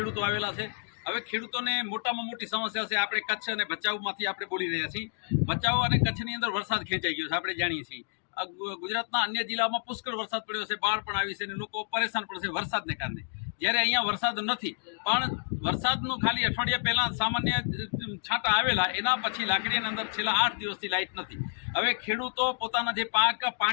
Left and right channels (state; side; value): silent; right; digital silence